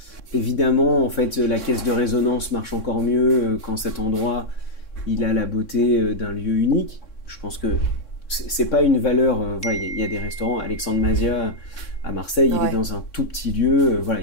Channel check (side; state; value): right; late; 3.6 ms